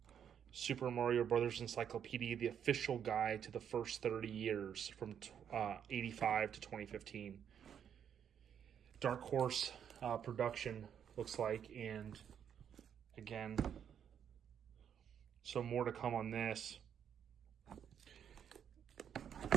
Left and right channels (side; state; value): left; quieter; 8.5 dB